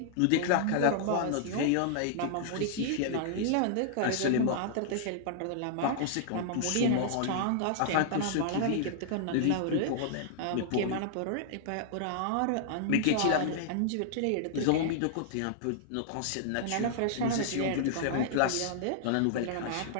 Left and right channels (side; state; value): both; different; correlation -0.01